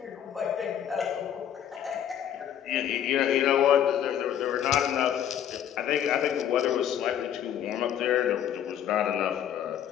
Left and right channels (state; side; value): quieter; right; 10.0 dB